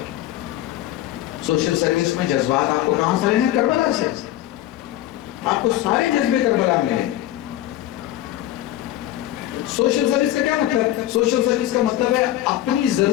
سوشل سروس میں جذبات آپ کو کہاں سے رہے ہیں؟ کربلا سے، آپ کو سارے جذبے کربلا میں ہیں۔ سوشل سروس کا کیا مطلب ہے؟ سوشل سروس کا مطلب ہے اپنی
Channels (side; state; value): right; quieter; 14.0 dB